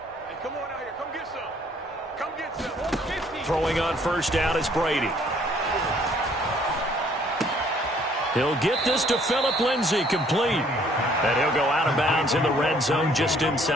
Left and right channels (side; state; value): both; normal; correlation 0.62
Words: come on out here. Come get some. Come get some. 50. Throwing on first down is Brady. He'll get this to Phillip Lindsay, complete. And he'll go out of bounds in the red zone just